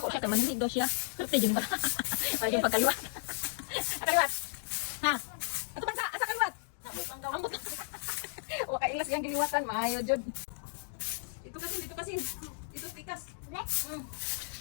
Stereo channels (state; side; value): silent; right; digital silence